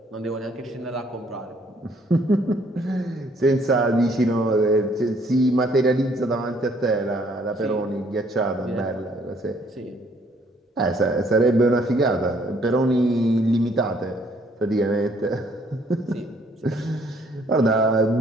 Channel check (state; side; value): normal; both; correlation 0.64